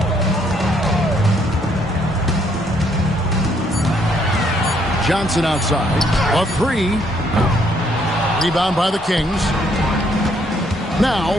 Johnson outside. A 3. Rebound by the Kings. Now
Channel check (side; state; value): both; normal; correlation 0.69